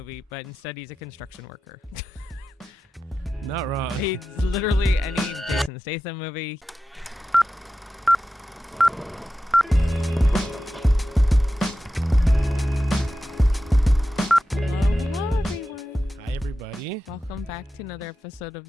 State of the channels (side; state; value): both; normal; correlation 0.92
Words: but instead he's a construction worker. Not wrong. He's literally any Jason Statham movie. Hello, everyone. Hi, everybody. Welcome back to another episode of